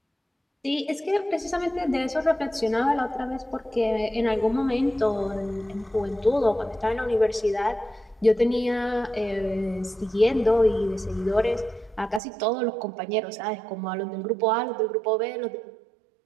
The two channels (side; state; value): left; drops out; at 12.2 s